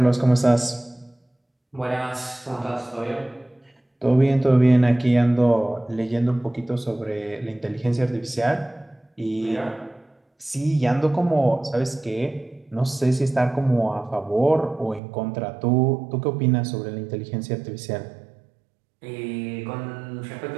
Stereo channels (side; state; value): left; drops out; at 15.0 s